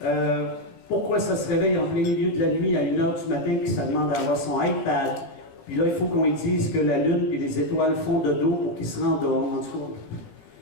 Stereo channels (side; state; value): right; late; 17 ms